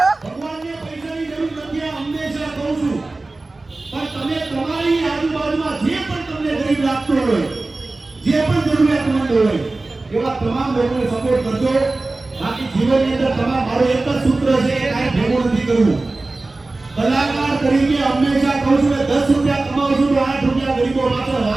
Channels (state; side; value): quieter; left; 3.2 dB